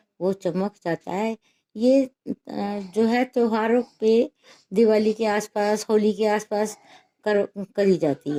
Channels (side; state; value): both; identical; correlation 1.00